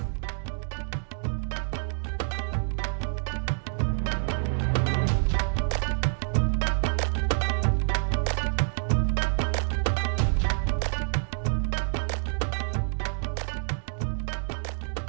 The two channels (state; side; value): silent; left; 60 dB below the other